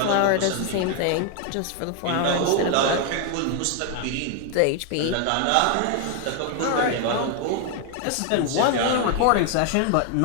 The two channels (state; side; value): different; both; correlation 0.00